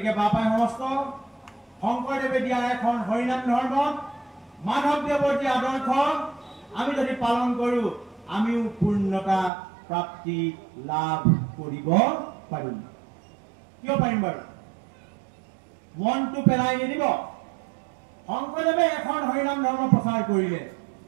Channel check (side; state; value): left; drops out; at 9.5 s